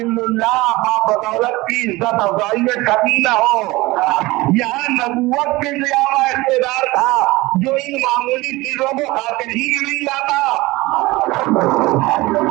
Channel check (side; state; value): left; quieter; 20.9 dB